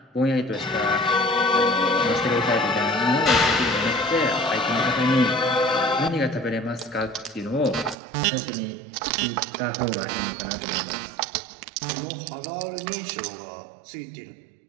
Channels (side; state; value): left; drops out; at 8.0 s